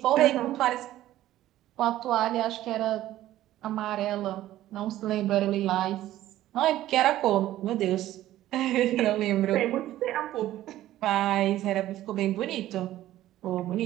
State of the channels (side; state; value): left; quieter; 14.1 dB